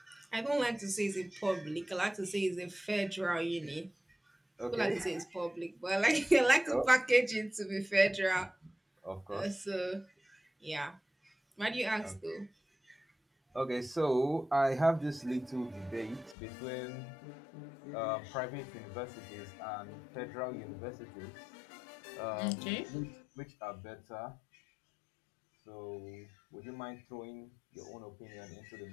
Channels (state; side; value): drops out; right; at 16.4 s